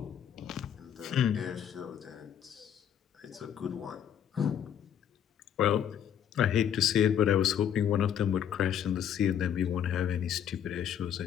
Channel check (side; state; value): right; quieter; 9.3 dB